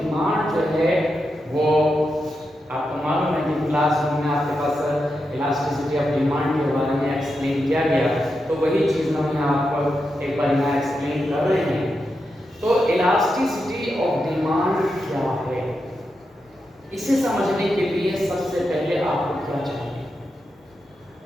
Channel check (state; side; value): normal; both; correlation 0.87